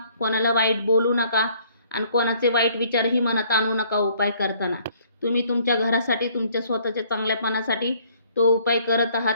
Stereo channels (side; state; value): both; inverted; correlation -0.61